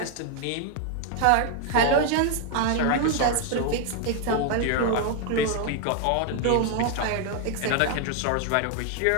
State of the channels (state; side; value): different; both; correlation 0.01